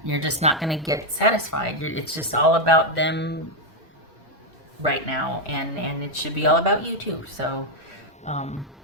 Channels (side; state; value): both; normal; correlation 0.02